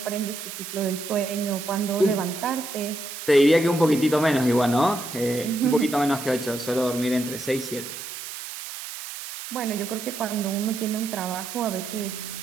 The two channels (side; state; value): right; noise; hiss, 9 dB below the sound